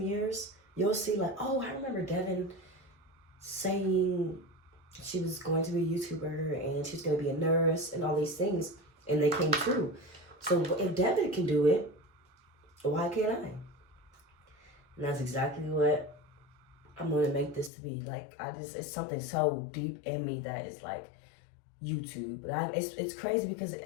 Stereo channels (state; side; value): drops out; right; at 17.7 s